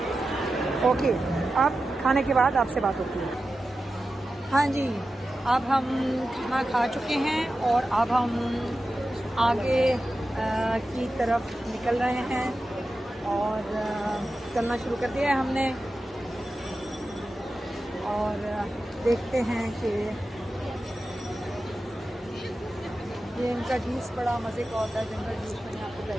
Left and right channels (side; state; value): both; normal; correlation 0.92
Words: ओके, आप खाने के बाद आपसे बात होती है। हाँ जी, अब हम खाना खा चुके हैं और अब हम आगे की तरफ निकल रहे हैं और चलना शुरू कर दिया है हमने। और देखते हैं कि ये इनका जूस बड़ा मज़े का होता है, जंगल जूस, मैंने आपको